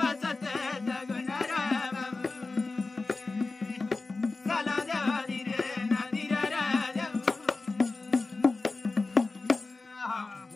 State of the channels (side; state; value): right; quieter; 3.6 dB